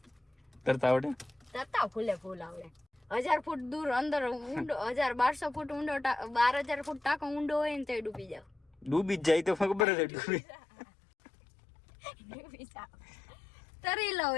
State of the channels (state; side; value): drops out; right; at 9.9 s